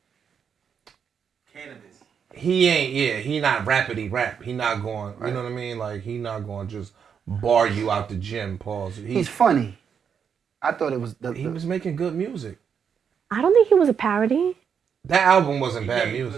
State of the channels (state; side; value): quieter; left; 7.2 dB